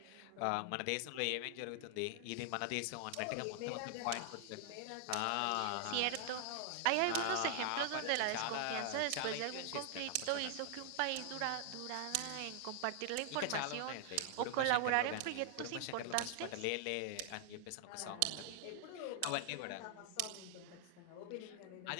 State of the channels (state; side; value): different; both; correlation 0.00